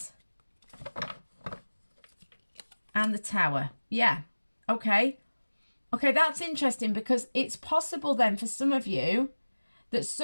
and the Tower. Yeah, okay. Okay, that's interesting, because it's possible then for some of you that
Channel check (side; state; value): both; inverted; correlation -1.00